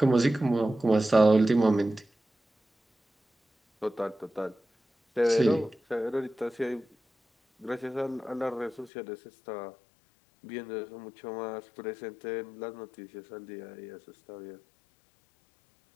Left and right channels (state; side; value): drops out; right; at 8.9 s